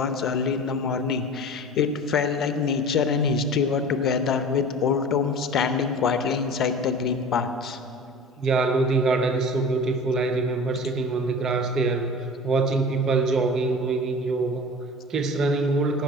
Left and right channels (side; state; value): both; normal; correlation 0.37